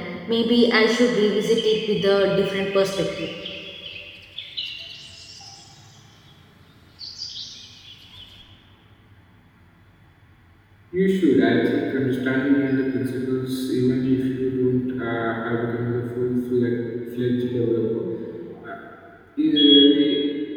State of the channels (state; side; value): identical; both; correlation 1.00